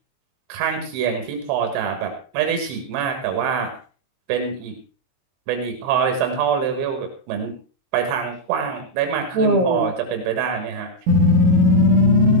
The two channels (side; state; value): left; late; 22 ms